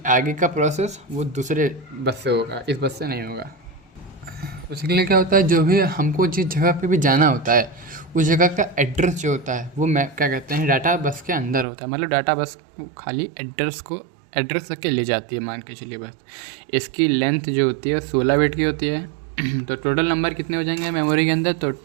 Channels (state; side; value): drops out; left; at 11.7 s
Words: आगे का प्रोसेस वो दूसरे बस से होगा, इस बस से नहीं होगा। उसके लिए क्या होता है, जो भी हमको जिस जगह पे भी जाना होता है, उस जगह का एड्रेस जो होता है वो क्या कहते हैं, डाटा बस के अंदर होता है। मतलब डाटा बस खाली एड्रेस तक के ले जाती है, मान के चलिए बस। इसकी लेंथ जो होती है 16 बिट की होती है। तो टोटल नंबर कितने हो जाएंगे मेमोरी के अंदर? तो